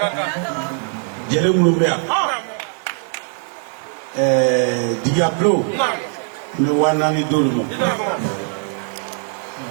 jɛlen minnu bɛ yan Jigi Abiyo namu n bɛ 4 di olu ma i da mɔgɔ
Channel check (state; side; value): silent; left; 55 dB below the other